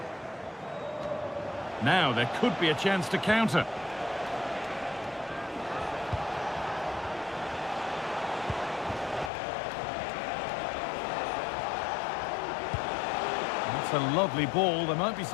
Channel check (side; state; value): right; drops out; at 9.3 s